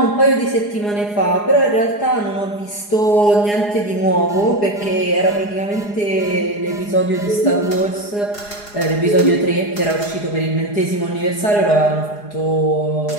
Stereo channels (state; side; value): late; right; 4.8 ms